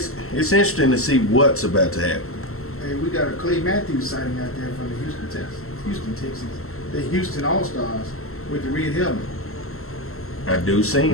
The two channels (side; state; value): right; late; 0.63 ms